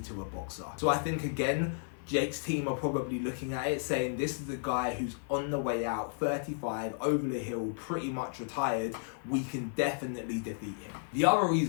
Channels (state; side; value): silent; right; 56 dB below the other